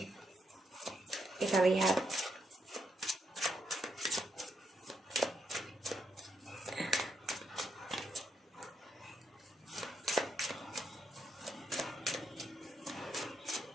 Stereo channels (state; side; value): normal; both; correlation 0.79